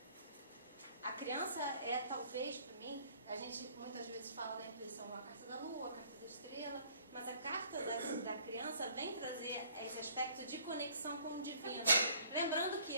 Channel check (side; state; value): both; inverted; correlation -0.58